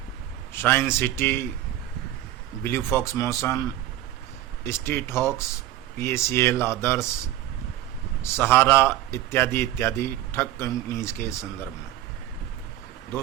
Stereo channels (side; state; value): left; quieter; 13.5 dB